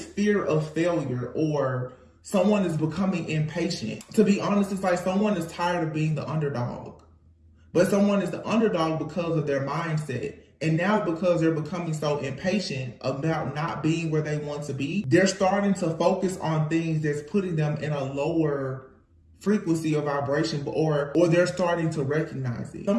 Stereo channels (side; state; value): both; identical; correlation 1.00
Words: fear of failure, or someone is becoming impatient. To be honest, it's like someone is tired of being the underdog. But someone is the underdog because of their mindset. And now because they're becoming so impatient about not being where they want to be, they're starting to focus on things that's putting them in a lower frequency of vibration, or they're starting to recognize it.